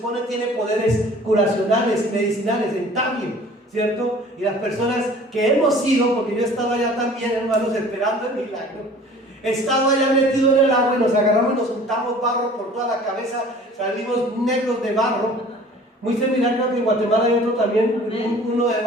tiene poderes curacionales y medicinales en Tabio, ¿cierto? Y las personas que hemos ido, porque yo he estado allá también, hermanos, esperando el milagro, he estado allá metido en el agua y nos agarramos y nos untamos barro por toda la cabeza, salimos negros de barro. Muy similar, creo que en Guatemala hay otro también, uno de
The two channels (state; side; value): normal; both; correlation 0.48